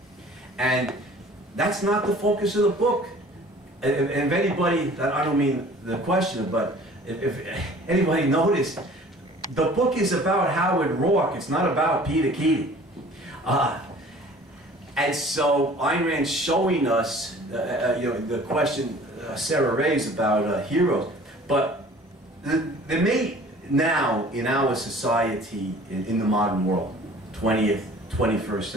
And that's not the focus of the book. And if anybody, I don't mean the question, but if anybody noticed, the book is about Howard Roark. It's not about Peter Keating. And so Ayn Rand's showing us, you know, the question Sarah raised about heroes. But there may now, in our society, in the modern world, 20th, 21st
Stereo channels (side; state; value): both; normal; correlation 0.49